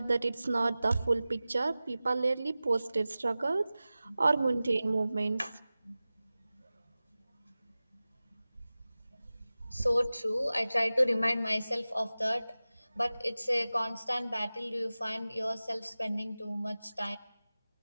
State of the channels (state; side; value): inverted; both; correlation -0.97